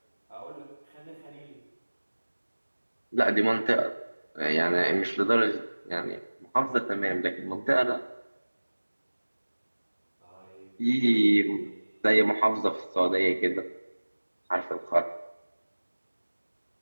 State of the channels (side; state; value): both; inverted; correlation -1.00